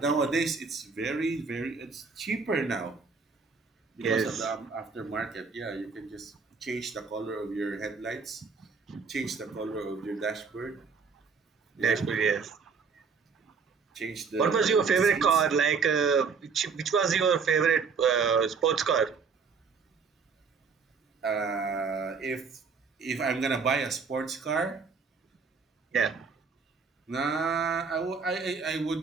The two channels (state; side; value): quieter; left; 5.3 dB